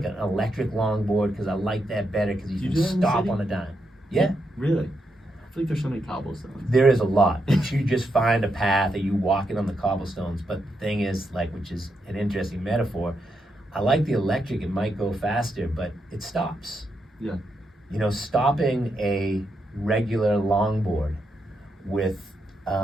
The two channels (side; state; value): both; normal; correlation 0.82